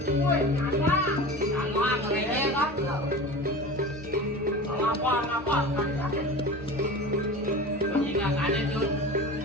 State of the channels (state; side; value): normal; both; correlation 0.33